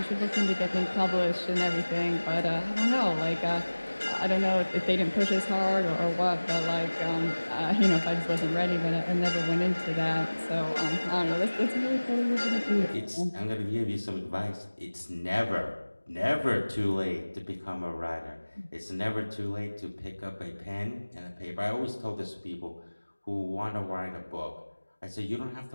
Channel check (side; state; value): both; inverted; correlation -1.00